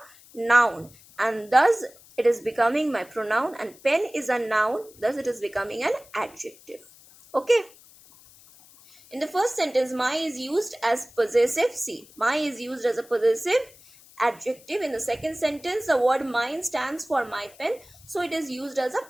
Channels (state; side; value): noise; left; hiss, 24 dB below the sound